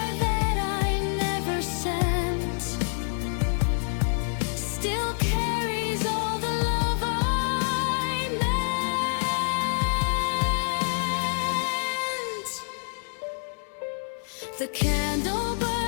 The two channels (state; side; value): silent; right; digital silence